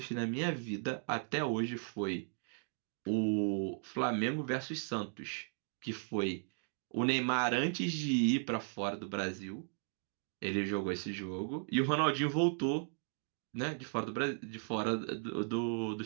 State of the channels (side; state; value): left; silent; 53 dB below the other